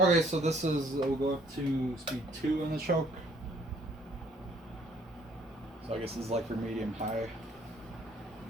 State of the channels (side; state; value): both; normal; correlation 0.62